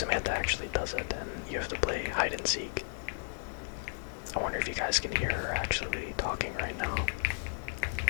actually does it, and you have to play hide and seek. I wonder if you guys can hear her actually talking right now.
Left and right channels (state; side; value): silent; right; digital silence